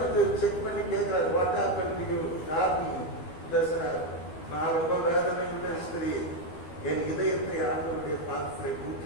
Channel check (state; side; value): late; right; 12 ms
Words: செக் பண்ணி கேட்கிறாரு. What happen to you? பேசுறாரு, நான் ரொம்ப வேதனை ஸ்திரீ, என் இதயத்தை ஆண்டவருடைய பாதத்தை